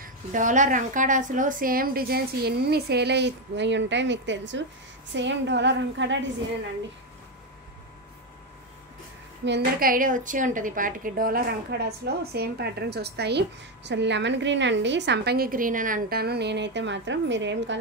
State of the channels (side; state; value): both; normal; correlation 0.08